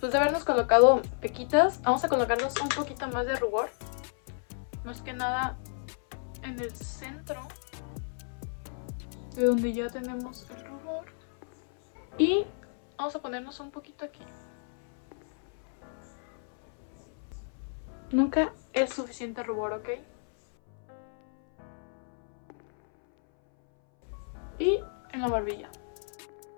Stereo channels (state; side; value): silent; right; 57 dB below the other